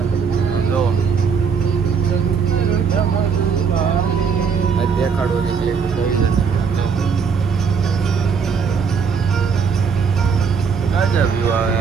આમ જો આ દેખાડો નીકળે જોઈ લે. ગાજા વ્યૂ આવે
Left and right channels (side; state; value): left; quieter; 6.0 dB